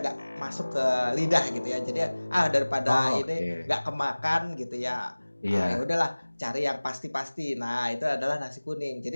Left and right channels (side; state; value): both; inverted; correlation -1.00